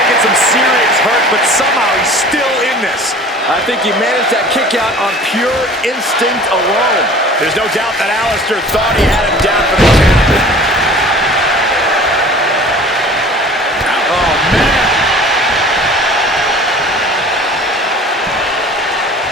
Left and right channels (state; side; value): normal; both; correlation 0.45